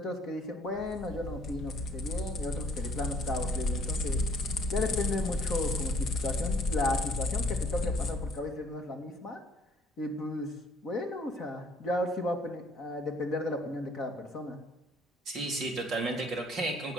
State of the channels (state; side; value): normal; both; correlation 0.60